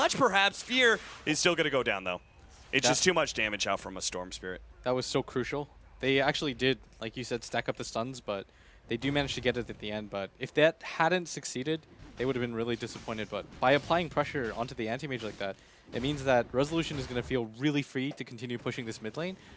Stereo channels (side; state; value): both; identical; correlation 1.00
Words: perhaps. Fear is still going to go down, though. It's just too much damage out from a Storm Spirit. That was so crucial. They actually did, like you said, stack up the stuns, but they do manage to get it at the end. But if that hadn't succeeded, they would have been really disappointed. But by applying pressure onto the anti-mage like that, it means that Resolution is going to feel really free to continue pushing this mid lane.